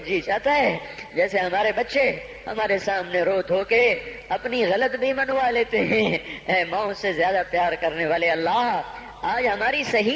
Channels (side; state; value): both; identical; correlation 1.00